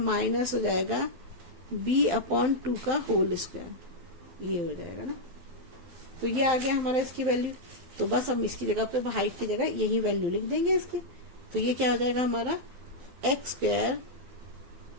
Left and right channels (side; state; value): left; late; 12 ms